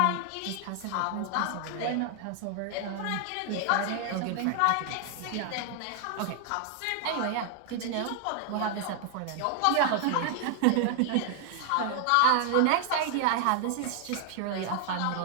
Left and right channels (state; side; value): different; both; correlation 0.00